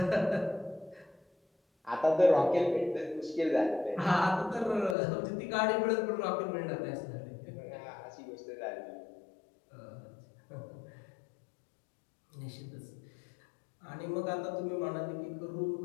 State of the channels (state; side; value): drops out; right; at 5.0 s